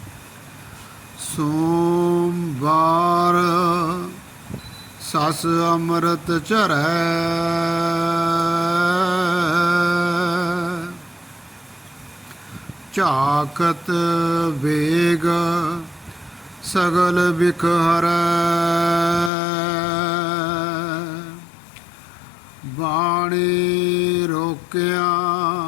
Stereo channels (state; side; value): drops out; right; at 19.3 s